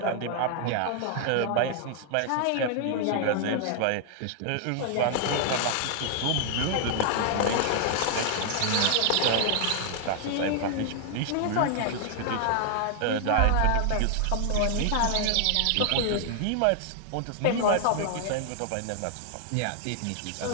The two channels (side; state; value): both; different; correlation 0.00